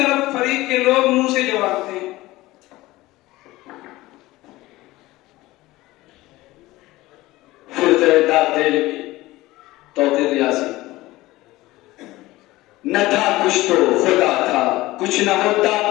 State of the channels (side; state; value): right; quieter; 18.5 dB